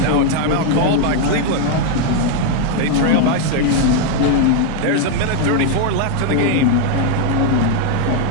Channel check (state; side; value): different; both; correlation 0.01